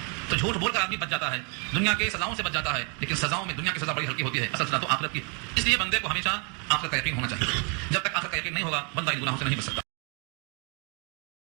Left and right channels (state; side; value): quieter; left; 35.3 dB